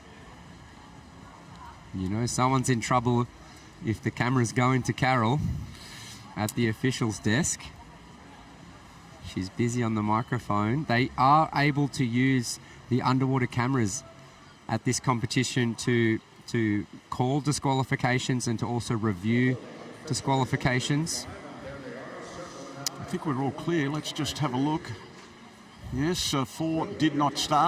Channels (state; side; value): identical; both; correlation 1.00